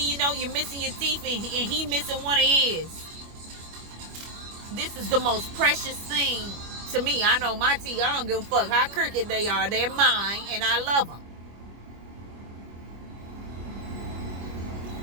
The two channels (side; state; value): left; late; 25 ms